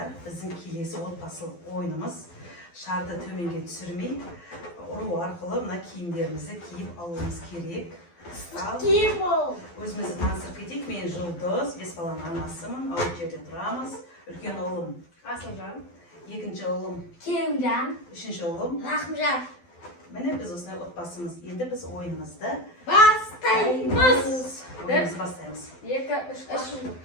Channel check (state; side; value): late; right; 12 ms